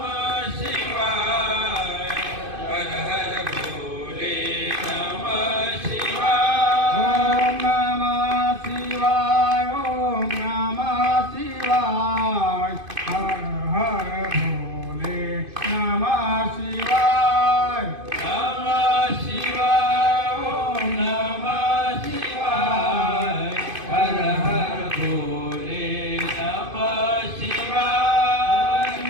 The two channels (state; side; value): late; left; 2.5 ms